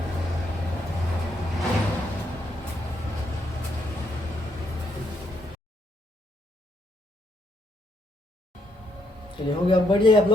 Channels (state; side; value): normal; both; correlation 0.75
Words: चलिए हो गया, अब बढ़ जाइए आप